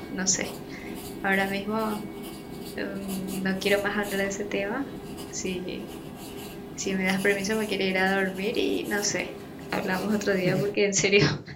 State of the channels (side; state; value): both; identical; correlation 1.00